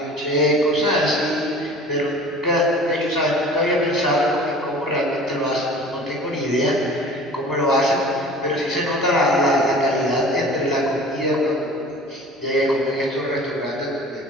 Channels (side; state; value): both; normal; correlation 0.44